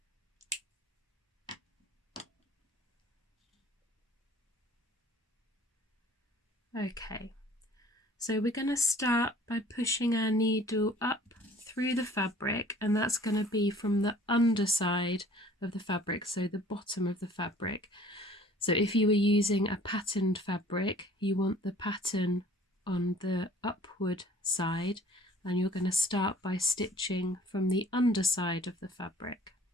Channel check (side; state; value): both; normal; correlation 0.51